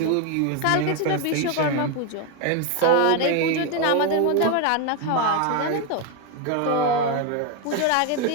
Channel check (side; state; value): both; different; correlation 0.01